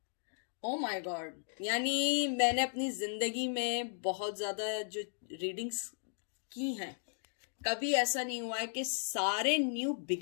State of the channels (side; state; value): right; silent; digital silence